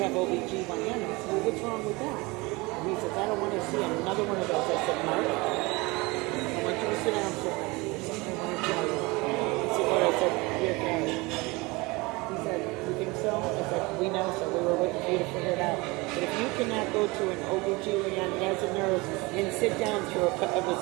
OBGYNs. Well, what's wrong with that? And he says, I don't want to see another one of those. I said, Mark, I want you to sit down for a minute. There's something I want to tell you. He said, what? I said, you're gay. He said, you think so? I said, we know so. We were waiting for you to figure it out. But if you cannot go to an OBGYN as a nurse and sit down through it was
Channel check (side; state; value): left; quieter; 24.3 dB